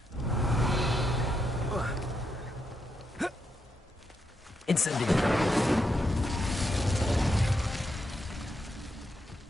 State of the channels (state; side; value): normal; both; correlation 0.82